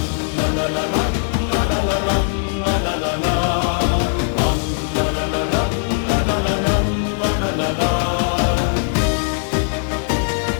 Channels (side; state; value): right; silent; digital silence